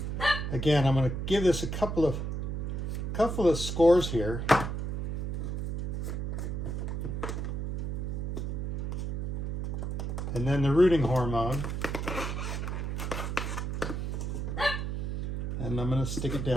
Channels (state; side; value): noise; right; hum, 3 dB below the sound